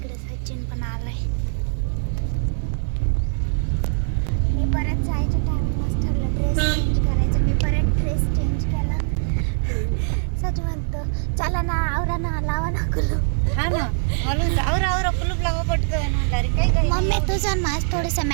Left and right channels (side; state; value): left; silent; 55 dB below the other